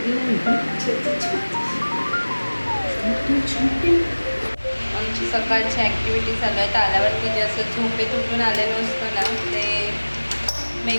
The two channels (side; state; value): both; inverted; correlation -1.00